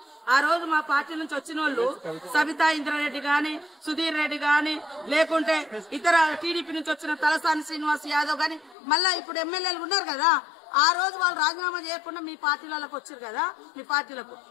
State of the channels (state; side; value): drops out; right; at 8.8 s